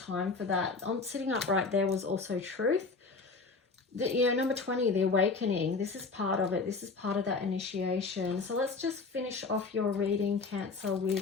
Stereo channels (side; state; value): right; quieter; 4.2 dB